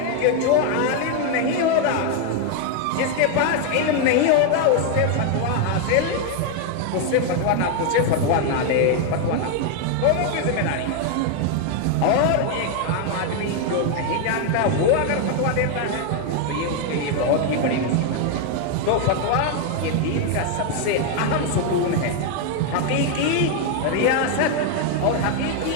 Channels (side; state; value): both; different; correlation 0.01